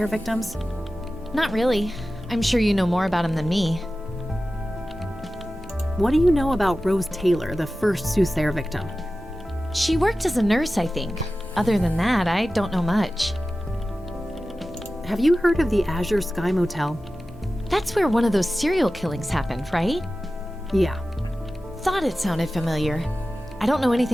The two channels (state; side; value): normal; both; correlation 0.95